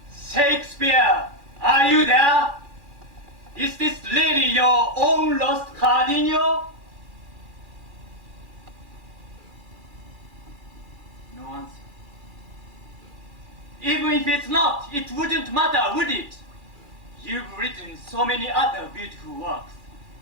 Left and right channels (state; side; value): late; left; 2.4 ms